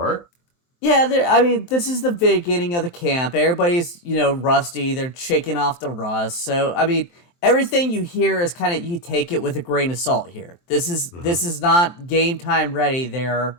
Yeah, this is the beginning of the camp. Everybody's, rusty. They're shaking off the rust. So, everything you hear is kind of, you take it with a grain of salt here. This is not game time ready.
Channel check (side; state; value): right; late; 23 ms